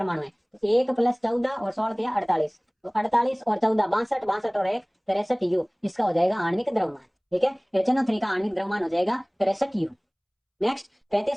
है। तो 1 + 14 और 16 दिया 48, तो 48 और 14 62, 62 और 1 63 U, इसका हो जाएगा आणविक द्रव्यमान, ठीक है। HNO3 का आणविक द्रव्यमान हो जाएगा 63 U। नेक्स्ट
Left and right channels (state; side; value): identical; both; correlation 1.00